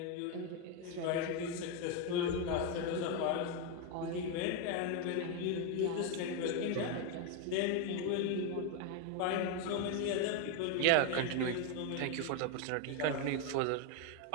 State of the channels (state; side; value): different; both; correlation 0.02